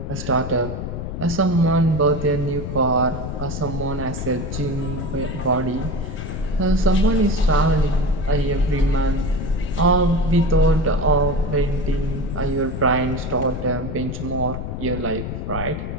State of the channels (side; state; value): left; noise; rumble, 6 dB below the sound